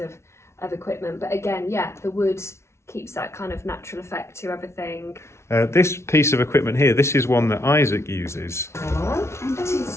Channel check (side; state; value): right; late; 0.13 ms